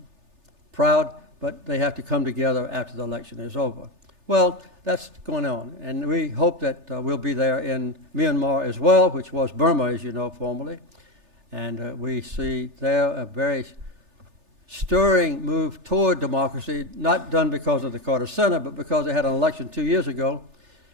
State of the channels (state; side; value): late; left; 3.3 ms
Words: proud, but they have to come together after the election is over. Well, that's going on, and we hope that we'll be there in Myanmar as well, which was Burma, as you know, formerly. And we see there a very stirring move toward democracy, not done because of the Carter Center, but because they had an election 2 years ago,